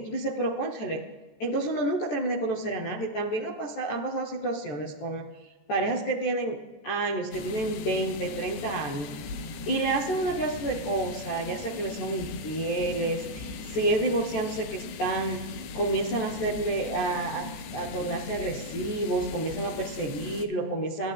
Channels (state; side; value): late; right; 14 ms